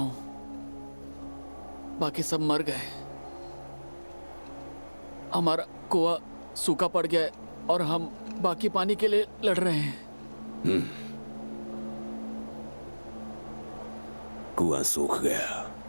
बाकी सब मर गए। हमारा कुआं सूखा पड़ गया है और हम बाकी पानी के लिए लड़ रहे हैं। कुआं सूख गया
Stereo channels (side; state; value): both; inverted; correlation -1.00